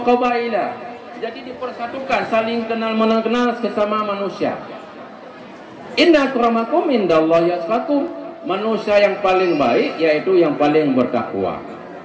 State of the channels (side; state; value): both; identical; correlation 1.00